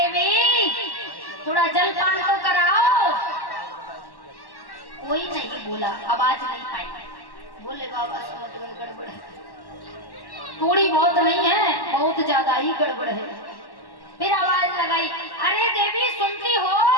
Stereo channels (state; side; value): late; right; 1.1 ms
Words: थोड़ा जलपान तो कराओ। कोई नहीं बोला, आवाज नहीं आई। भोले बाबा समझ गए गड़बड़ है, थोड़ी बहुत नहीं है, बहुत ज्यादा ही गड़बड़ है। फिर आवाज लगाई, अरे देवी सुनती हो,